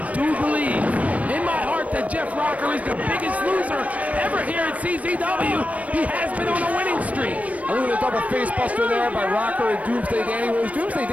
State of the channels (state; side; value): late; left; 0.067 ms